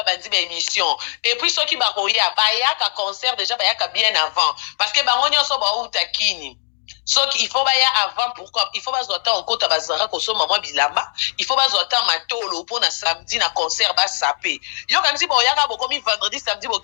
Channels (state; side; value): silent; right; digital silence